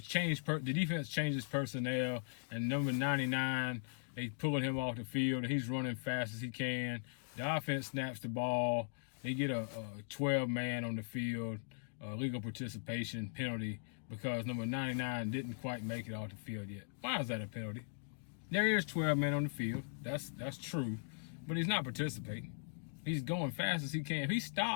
defense changes personnel, and number 99, they pulling him off the field, and he's running fast as he can. The offense snaps the ball. They get a 12-man on the field, legal participation penalty, because number 99 didn't quite make it off the field yet. Why is that a penalty? There is 12 men on the field. That's true, but he's not participating. He's going fast as he can. If he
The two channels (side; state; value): right; silent; digital silence